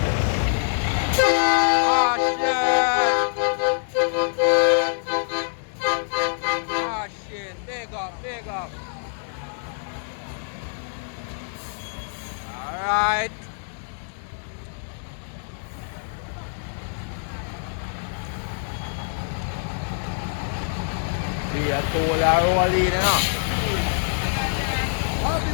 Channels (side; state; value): right; silent; digital silence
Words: Big up. Alright. See a toll rolling,